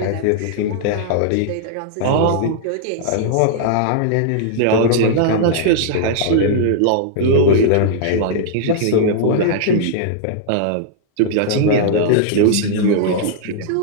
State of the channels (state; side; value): different; both; correlation -0.01